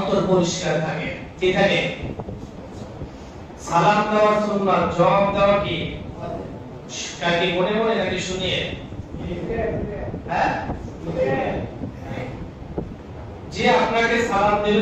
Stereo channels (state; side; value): identical; both; correlation 1.00